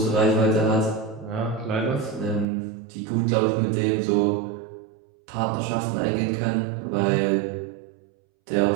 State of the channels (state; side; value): drops out; left; at 2.5 s